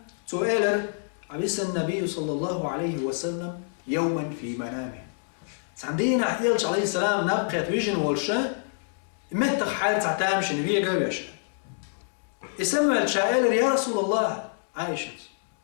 سؤال عبس النبي صلى الله عليه وسلم يوما في منامه عندنا يلش عليه السلام نبقى ويجن والشا متى حال تعتامش نبيه قويش اسمع الشائل يا رسول الله عائشة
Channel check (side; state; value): right; silent; 60 dB below the other